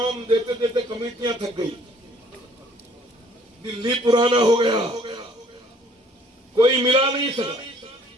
دیتے دیتے کمیٹیاں تھک گئی، دلی پرانا ہو گیا، کوئی ملا نہیں سکا۔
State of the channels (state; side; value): normal; both; correlation 0.59